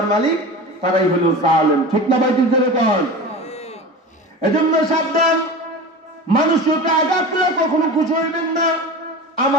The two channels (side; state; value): both; normal; correlation 0.31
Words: মালিক তারাই হলো জালেম। ঠিক না ভাই? যেরকম এজন্য সাবধান, মানুষকে আঘাত করে কখনো খুশি হইবেন না।